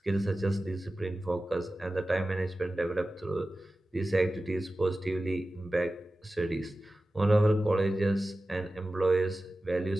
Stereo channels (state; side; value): normal; both; correlation 0.95